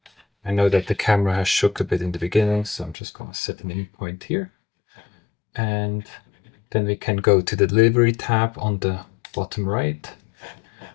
I know that the camera has shook a bit in the beginning, so I'm just going to set an in point here. And then we can go to the Delivery tab on the bottom right.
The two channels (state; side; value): drops out; right; at 3.0 s